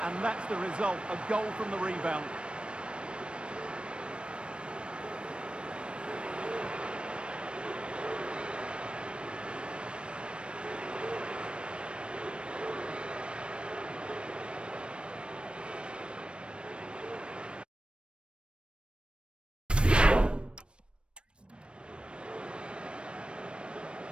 and that's the result, a goal from the rebound.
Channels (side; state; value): left; late; 0.057 ms